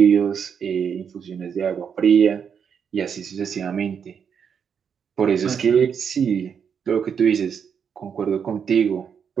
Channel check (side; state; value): left; quieter; 7.2 dB